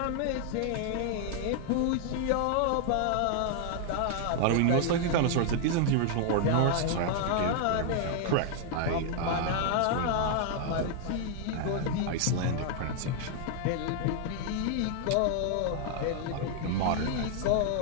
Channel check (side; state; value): both; different; correlation 0.00